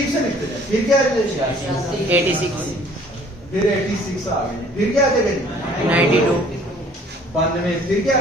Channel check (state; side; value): normal; both; correlation 0.55